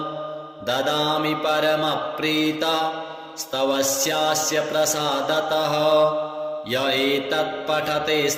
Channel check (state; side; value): identical; both; correlation 1.00